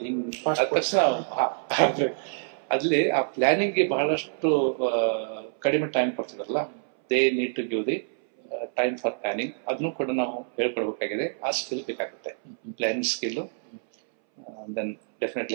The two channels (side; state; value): left; silent; 60 dB below the other